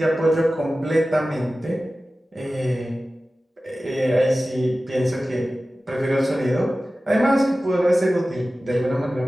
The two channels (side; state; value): both; normal; correlation 0.96